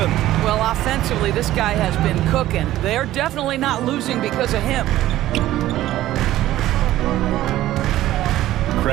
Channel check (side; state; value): left; quieter; 14.5 dB